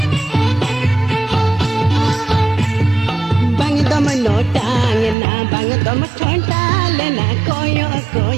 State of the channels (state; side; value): drops out; left; at 5.2 s